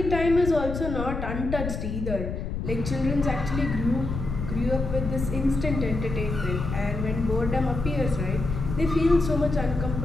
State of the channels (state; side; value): noise; left; rumble, 4 dB below the sound